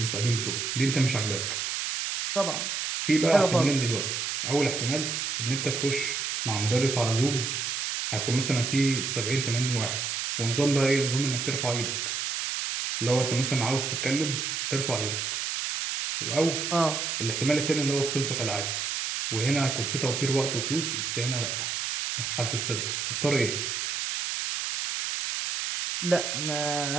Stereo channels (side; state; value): right; noise; hiss, 2 dB below the sound